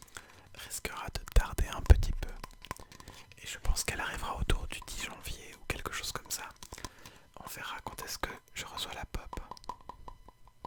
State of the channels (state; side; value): identical; both; correlation 1.00